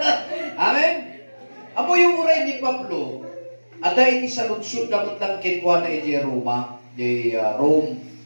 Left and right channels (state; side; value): inverted; both; correlation -1.00